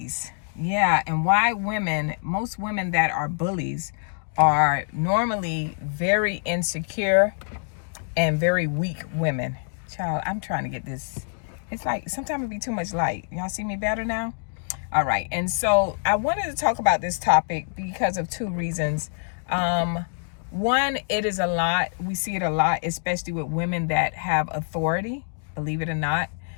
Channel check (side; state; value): right; silent; digital silence